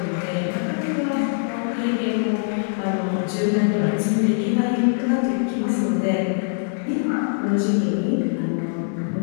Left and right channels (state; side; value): silent; right; 64 dB below the other